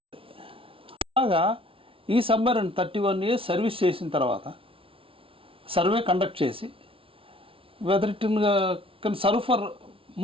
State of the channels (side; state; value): left; late; 0.26 ms